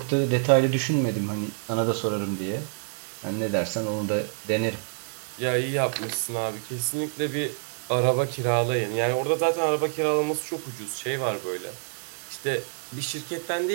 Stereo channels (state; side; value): silent; left; 60 dB below the other